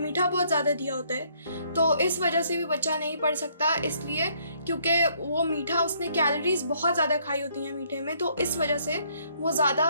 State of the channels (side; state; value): both; inverted; correlation -0.67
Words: बहुत ज़्यादा दिया होता है, तो इस वजह से भी बच्चा नहीं पढ़ सकता, इसलिए क्योंकि वो मीठा, उसने कैलोरीज बहुत ज़्यादा खाई होती हैं मीठे में, तो इस वजह से वो